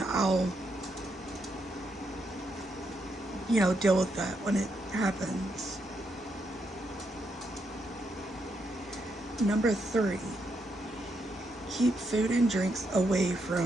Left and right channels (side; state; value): both; normal; correlation 0.80